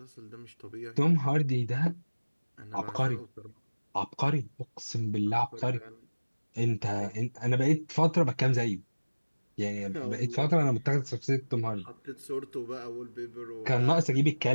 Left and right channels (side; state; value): both; inverted; correlation -1.00